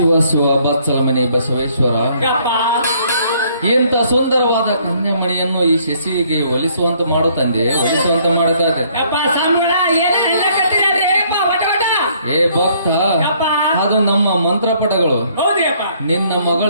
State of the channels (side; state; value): both; inverted; correlation -0.64